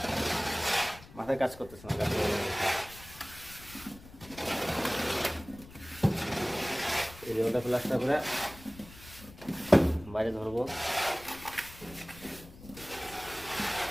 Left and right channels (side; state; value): left; noise; rumble, 19 dB below the sound